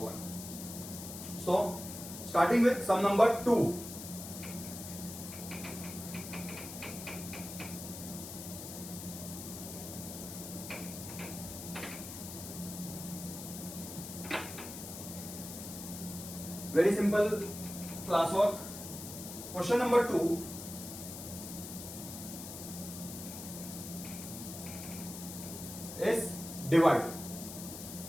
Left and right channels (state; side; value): noise; left; hiss, 10 dB below the sound